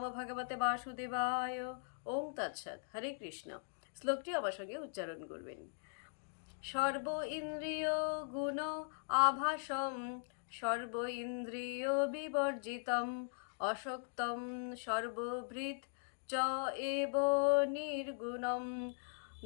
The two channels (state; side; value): silent; right; digital silence